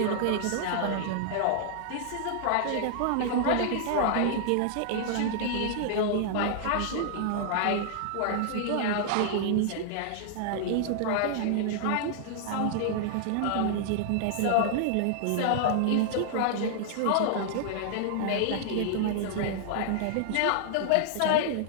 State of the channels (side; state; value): both; different; correlation -0.01